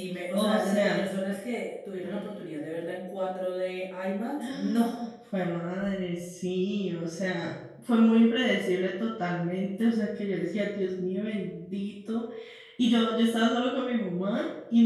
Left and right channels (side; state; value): both; identical; correlation 1.00